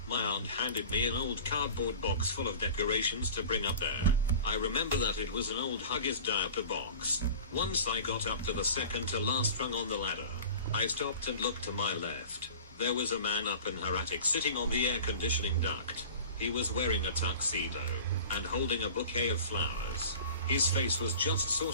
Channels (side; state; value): both; inverted; correlation -0.39